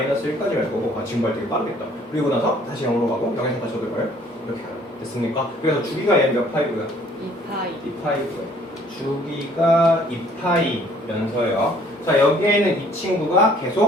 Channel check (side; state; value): both; normal; correlation 0.58